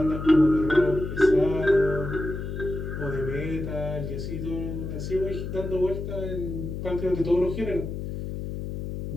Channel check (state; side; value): noise; left; hum, 6 dB below the sound